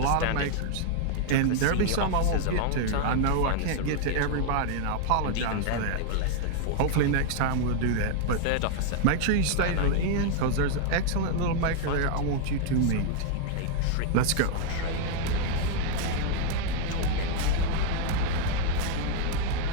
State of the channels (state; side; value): different; both; correlation 0.00